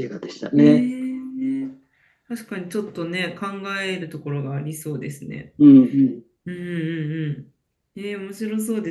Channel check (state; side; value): identical; both; correlation 1.00